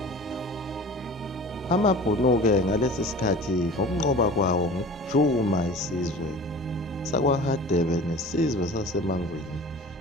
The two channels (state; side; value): normal; both; correlation 0.41